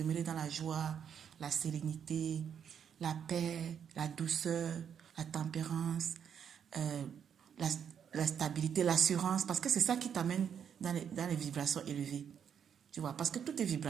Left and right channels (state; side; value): quieter; left; 8.0 dB